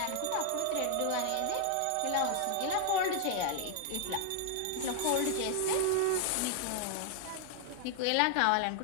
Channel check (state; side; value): different; both; correlation 0.00